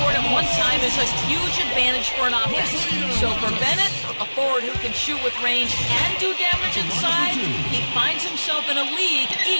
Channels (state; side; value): inverted; both; correlation -1.00